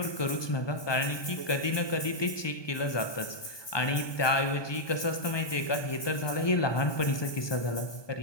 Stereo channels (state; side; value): late; right; 1.2 ms